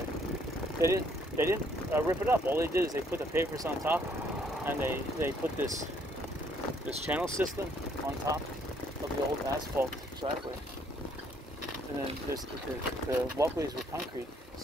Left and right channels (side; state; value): both; normal; correlation 0.66